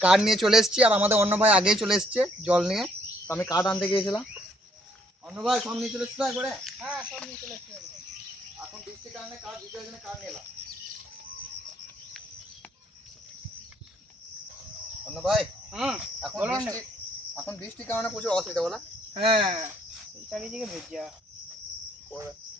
কার নিয়ে চলে এসেছি আর আমাদের অন্য ভাই আগেই চলে এসছে জল নিয়ে। তো আমি কার আনতে গিয়েছিলাম, অন্য ভাই সব নিয়ে চলে এসছে একবারে। হ্যাঁ সব নিয়ে চলে এসছে। এখন বৃষ্টির কারণে কার ভিতরে জন্য কার নিয়ে এলাম। অন্য ভাই এখন বৃষ্টির কারণে প্রচুর অসুবিধা বলা। হ্যাঁ চারিদিকে ভেজা।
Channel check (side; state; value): both; normal; correlation 0.66